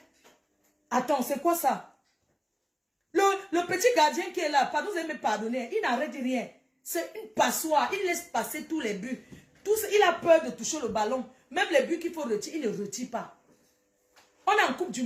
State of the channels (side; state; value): both; identical; correlation 1.00